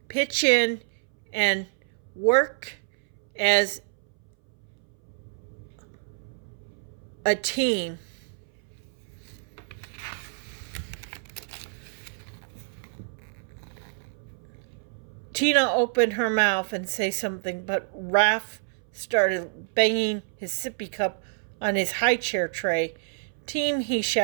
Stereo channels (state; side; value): silent; left; 59 dB below the other